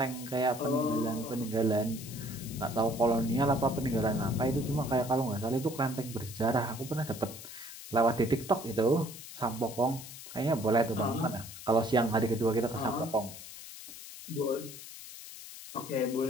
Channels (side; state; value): left; noise; hiss, 13 dB below the sound